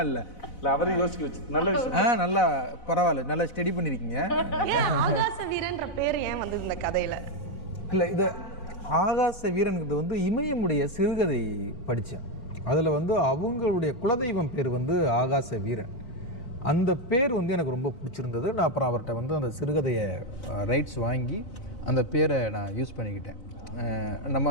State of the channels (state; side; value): late; right; 4.0 ms